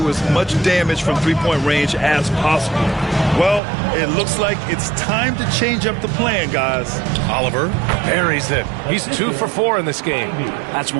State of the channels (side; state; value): left; drops out; at 3.6 s